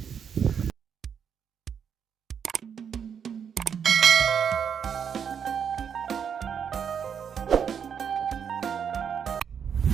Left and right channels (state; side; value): quieter; left; 7.5 dB